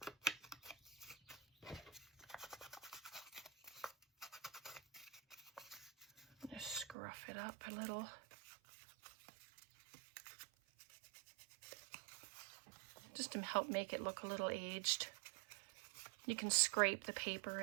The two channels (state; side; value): drops out; left; at 7.0 s